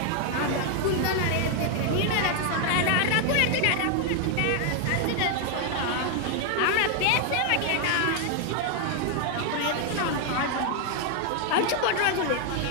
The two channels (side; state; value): both; different; correlation 0.00